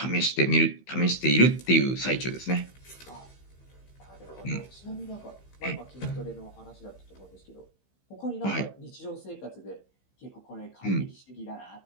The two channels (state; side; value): late; right; 15 ms